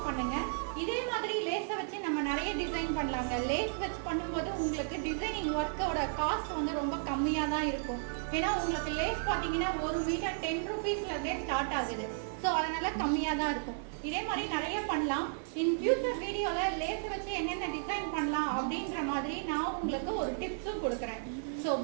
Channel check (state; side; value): silent; left; digital silence